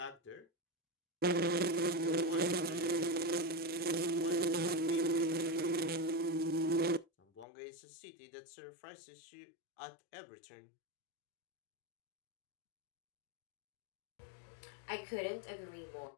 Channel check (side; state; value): right; drops out; at 7.5 s